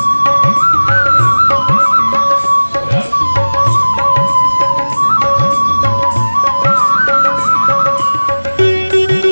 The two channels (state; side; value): inverted; both; correlation -1.00